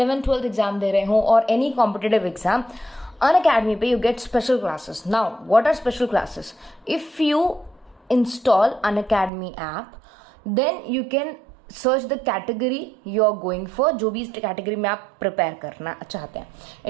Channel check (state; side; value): drops out; left; at 9.3 s